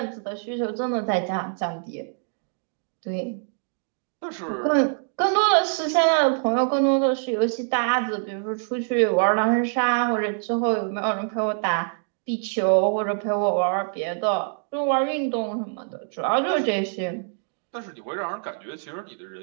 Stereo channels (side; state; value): left; silent; digital silence